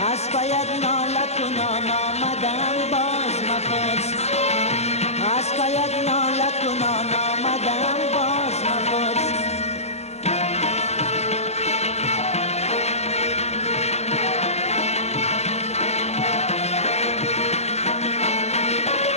از پایت ناله کنان آمدم باز مپرس، از پایت ناله کنان آمدم باز مپرس.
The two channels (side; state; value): right; late; 0.31 ms